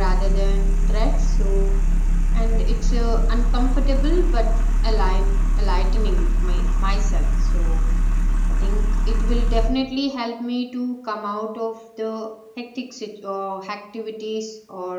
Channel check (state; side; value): identical; both; correlation 1.00